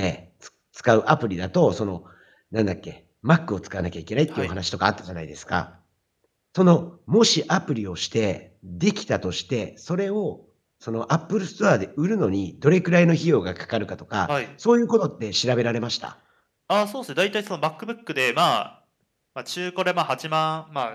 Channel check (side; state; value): both; identical; correlation 1.00